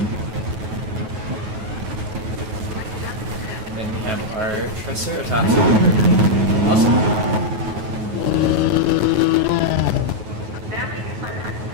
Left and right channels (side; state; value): left; late; 9.3 ms